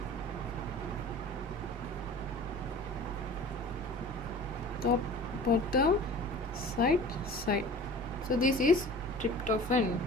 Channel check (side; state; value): both; normal; correlation 0.41